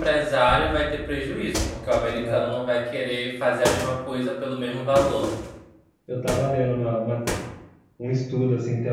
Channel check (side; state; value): both; identical; correlation 1.00